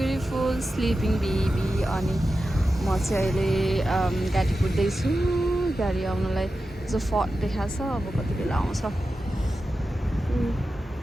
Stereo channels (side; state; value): both; normal; correlation 0.92